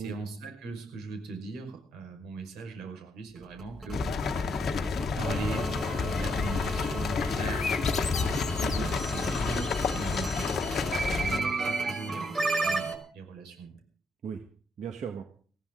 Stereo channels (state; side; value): normal; both; correlation 0.76